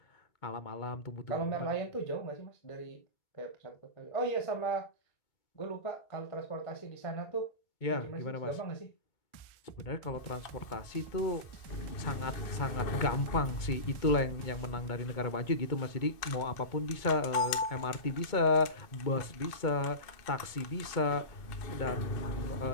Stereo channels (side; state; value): right; late; 2.2 ms